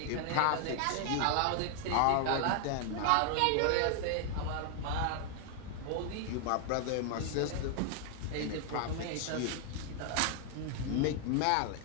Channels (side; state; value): both; different; correlation 0.00